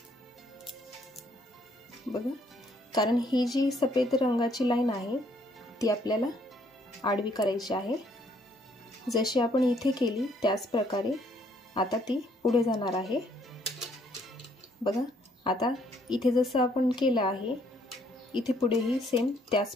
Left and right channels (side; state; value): both; normal; correlation 0.66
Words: बघा, कारण ही जी सफेद रंगाची लाईन आहे ती आपल्याला आडवी करायची आहे। जशी आपण इथे केली त्याच प्रकारे आता ती पुढे जाणार आहे। बघा, आता इथे जसं आपण केलं आहे इथे पुढेही सेम त्याच